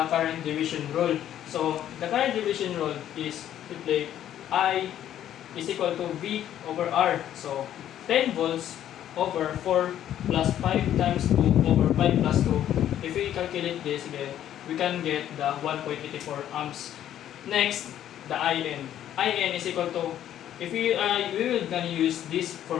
current division rule. So the current division rule is simply I is equal to V over R. So 10 volts over 4 plus 5 times 2 over 5 plus 2. If we calculate this again, we can get the 1.84 amps. Next, the IN. IN is equal to, if we will gonna use this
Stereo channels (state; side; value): quieter; right; 11.2 dB